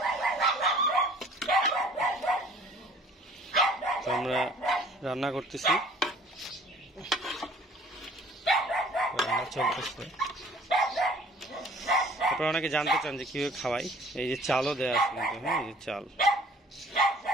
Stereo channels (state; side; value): normal; both; correlation 0.52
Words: তো আমরা রান্না করতেছি, রান্না চলতেছে। আপনারা অনেকে জানতে চান যে কিভাবে খাওয়াই। এই যে চালও দেওয়া আছে কিন্তু, হ্যাঁ, এই যে